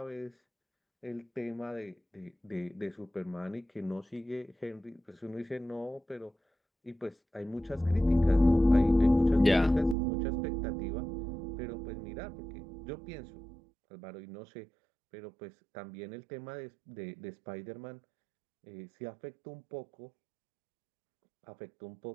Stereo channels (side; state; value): left; drops out; at 10.0 s